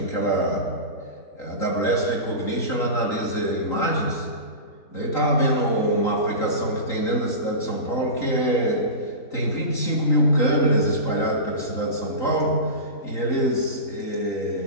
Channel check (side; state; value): right; late; 3.9 ms